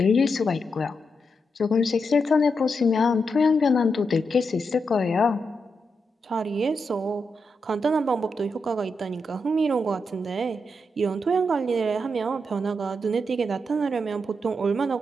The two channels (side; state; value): both; normal; correlation 0.84